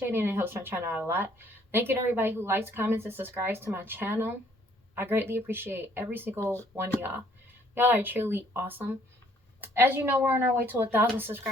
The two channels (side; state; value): both; normal; correlation 0.62